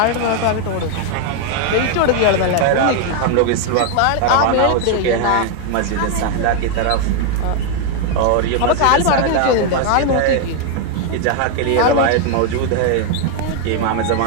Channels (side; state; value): both; different; correlation 0.00